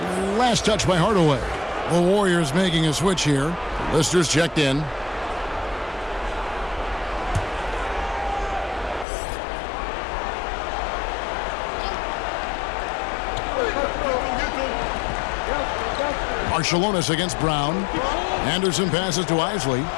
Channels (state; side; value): drops out; right; at 9.1 s